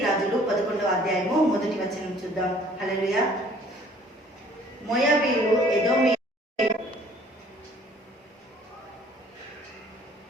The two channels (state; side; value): normal; both; correlation 0.56